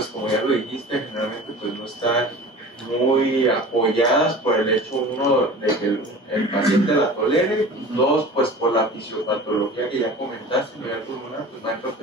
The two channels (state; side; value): normal; both; correlation 0.38